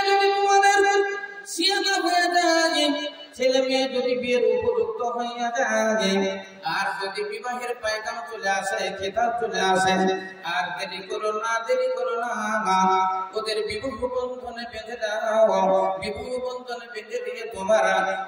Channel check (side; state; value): both; identical; correlation 1.00